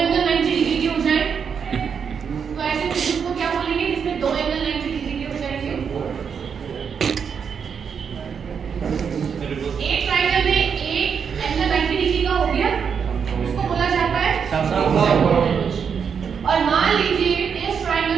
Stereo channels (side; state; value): left; quieter; 6.8 dB